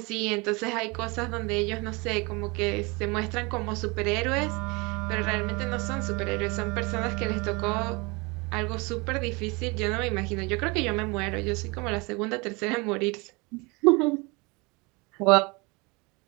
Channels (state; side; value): quieter; left; 27.3 dB